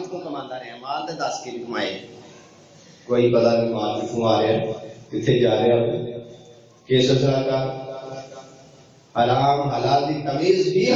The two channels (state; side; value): identical; both; correlation 1.00